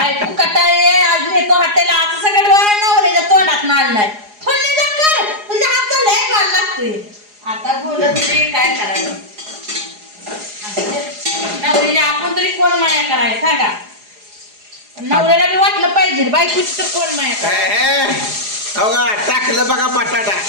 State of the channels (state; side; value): late; left; 4.8 ms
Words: कटाळे आज येतो हॉटेलला असं सगळं डोळा नवऱ्याच्या तोंडात नाळलाय. फोडणी जा कर तुझ्या हातचं लय माल लागतोय. आता बोलत तरी काय करायचं. नवऱ्याला आपण तरी कोण माया करायला सांगा. नवऱ्याला बी वाटलं पाहिजे बायकोची तर कोण माया करायला. बघा टाकलं बघा बटाटा.